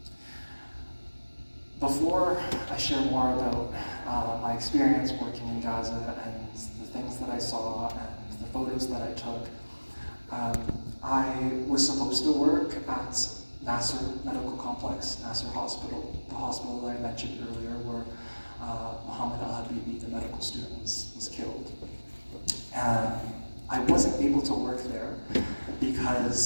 Before I share more about my experience working in Gaza and the things that I saw and the photos that I took, I was supposed to work at Nasser Medical Complex, Nasser Hospital, the hospital that I mentioned earlier where Mohammed Al-Habibi, the medical student, was killed. I wasn't able to work there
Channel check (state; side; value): inverted; both; correlation -1.00